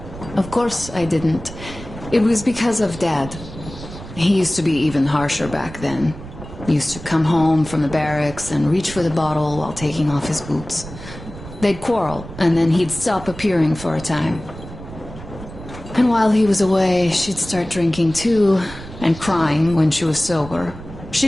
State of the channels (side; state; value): right; noise; rumble, 14 dB below the sound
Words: Of course I didn't. It was because of Dad. He used to be even harsher back then. He used to come home from the barracks and reach for the bottle while taking off his boots. They'd quarrel, and then he'd stop appearing for a time. And while he was away, she'd start drinking too, and crying when she was sober.